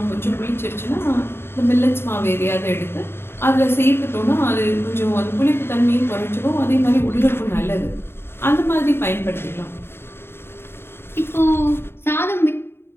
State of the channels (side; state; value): right; late; 0.11 ms